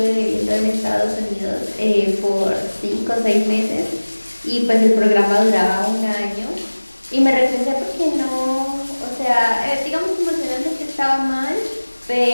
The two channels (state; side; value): inverted; both; correlation -1.00